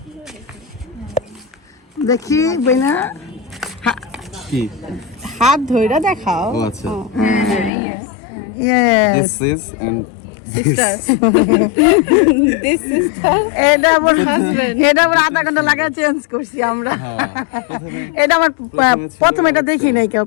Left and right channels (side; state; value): right; drops out; at 7.7 s